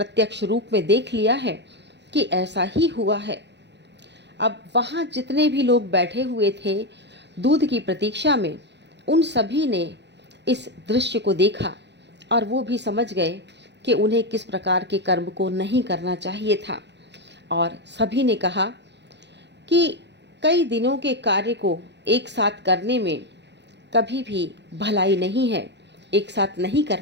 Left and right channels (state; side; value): late; left; 0.51 ms